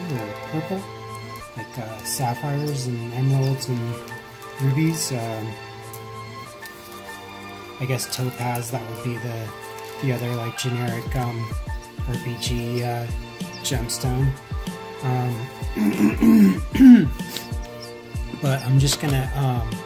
purple, like sapphires and emeralds and rubies. I guess topaz, that would be the other like generic RPG gemstone. But I'm just gonna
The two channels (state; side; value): identical; both; correlation 1.00